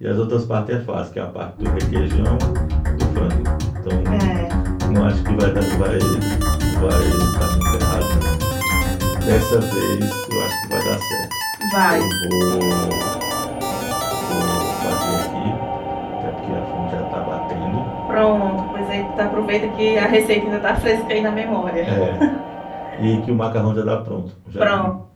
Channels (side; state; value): both; identical; correlation 1.00